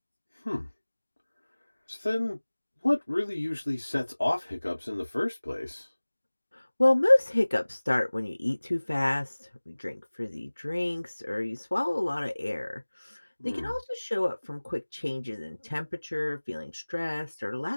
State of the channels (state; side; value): inverted; both; correlation -1.00